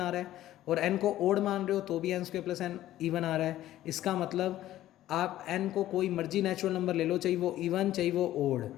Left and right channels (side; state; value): right; quieter; 13.9 dB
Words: आ रहा है, और n को ओड मान रहे हो तो भी n square plus n even आ रहा है। इसका मतलब आप n को कोई मर्जी नेचुरल नंबर ले लो, चाहिए वो इवन चाहिए वो odd,